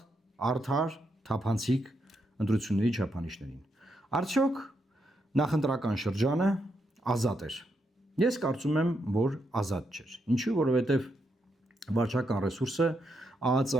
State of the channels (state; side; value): normal; both; correlation 0.81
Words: արդար, թափանցիկ ընտրությունների չափանիշներին։ Արդյոք նախընտրական շրջանը ազատ էր։ Ես կարծում եմ, որ ազատ չէր։ Ինչու՞, որովհետև վարչական ռեսուրսը